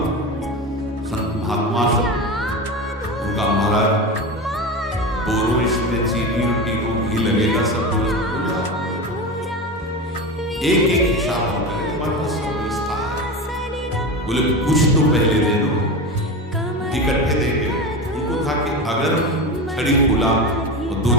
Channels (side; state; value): both; normal; correlation 0.24